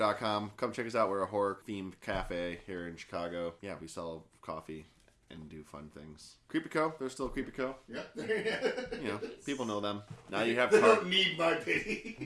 Come check us out. We're a horror-themed cafe here in Chicago. Yeah, we sell coffee and do fun things. Creepyco, they're still Creepyco. Yeah. People know them. Now you have they don't need my pity.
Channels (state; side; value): identical; both; correlation 1.00